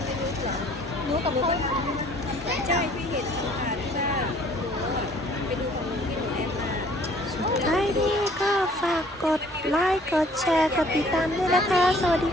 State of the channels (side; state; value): both; normal; correlation 0.56